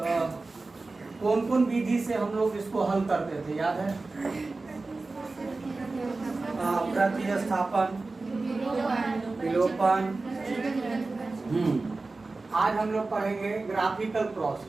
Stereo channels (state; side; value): quieter; left; 3.5 dB